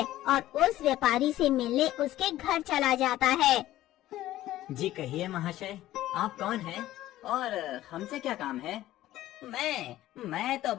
और उस व्यापारी से मिलने उसके घर चला जाता है। जी कहिए महाशय, आप कौन हैं और हमसे क्या काम है? मैं तो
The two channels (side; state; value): right; quieter; 14.7 dB